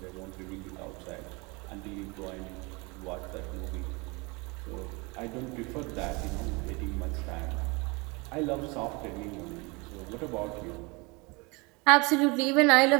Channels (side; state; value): left; quieter; 27.4 dB